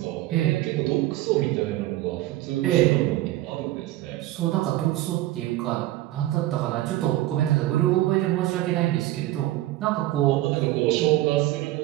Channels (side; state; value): left; quieter; 16.1 dB